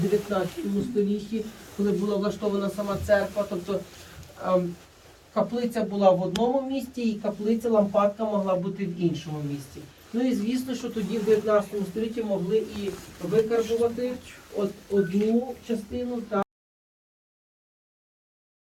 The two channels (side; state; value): both; identical; correlation 1.00